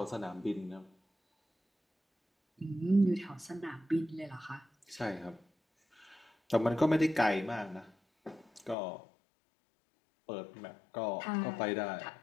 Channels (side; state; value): right; drops out; at 8.8 s